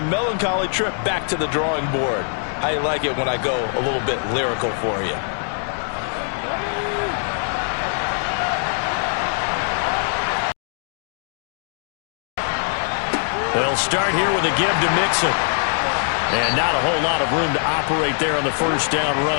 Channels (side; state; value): right; silent; 64 dB below the other